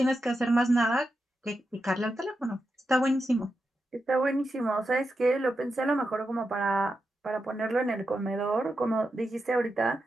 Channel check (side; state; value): both; normal; correlation 0.87